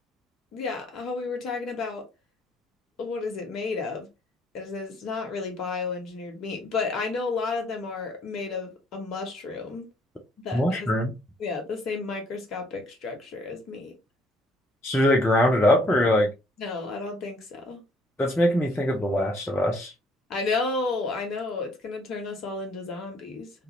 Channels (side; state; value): both; normal; correlation 0.63